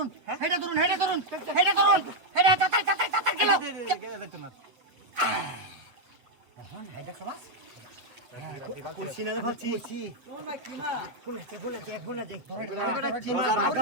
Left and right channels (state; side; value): late; left; 8.1 ms